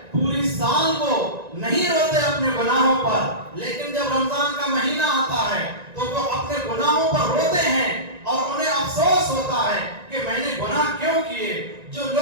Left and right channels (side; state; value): left; late; 1.9 ms